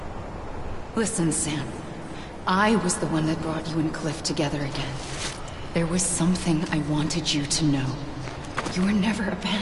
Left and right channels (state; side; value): identical; both; correlation 1.00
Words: Listen, Sam. I was the one that brought you and Cliff together again. There was something I wanted you to know. You were never